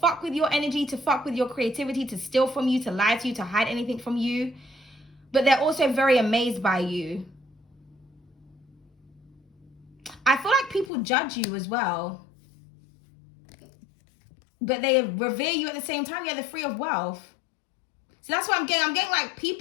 with your energy, to fuck with your creativity, to steal from you, to lie to you, to hide anything from you, but they're also very amazed by you. I feel like people judge you as well, but they revere you at the same time. Yeah, they're free of wealth. So that's what I'm getting. I'm getting like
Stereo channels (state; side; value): drops out; right; at 10.9 s